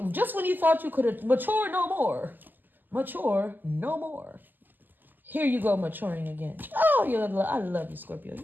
just when you thought you could mature no more, here you go maturing again. Oh, I love you, Scorpio.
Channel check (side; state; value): left; late; 0.088 ms